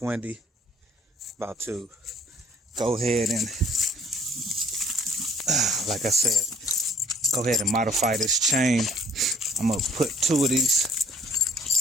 windy. About to go ahead and, like I said, go ahead and modify this chain. I'm gonna put 2 of these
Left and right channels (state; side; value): normal; both; correlation 0.56